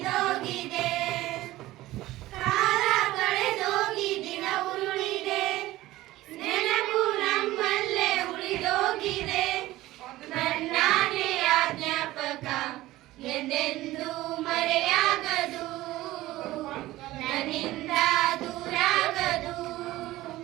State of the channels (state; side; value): quieter; left; 16.9 dB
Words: ಕಾಲ ಕಳೆದೋಗಿ ದಿನ ಉರುಳಿದೆ ನೆನಪು ನಮ್ಮಲ್ಲೇ ಉಳಿದೋಗಿದೆ ನನ್ನಾನೆಯ ಜ್ಞಾಪಕ ಎಂದೆಂದೂ ಮರೆಯಾಗದು ನನ್ನಿಂದ ದೂರಾಗದು